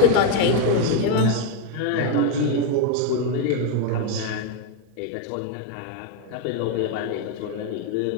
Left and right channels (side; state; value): both; different; correlation 0.01